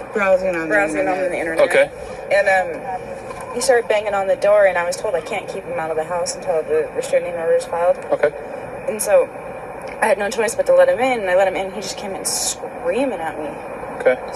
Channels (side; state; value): both; identical; correlation 1.00